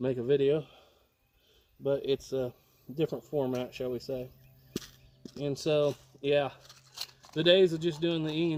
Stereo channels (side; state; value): both; identical; correlation 1.00